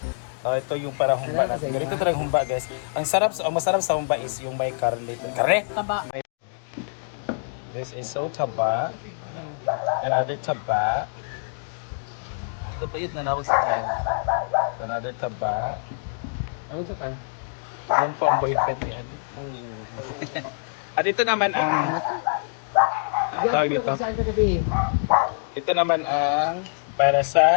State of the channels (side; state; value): right; silent; digital silence